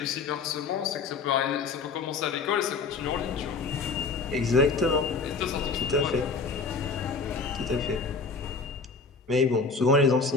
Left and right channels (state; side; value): quieter; right; 4.5 dB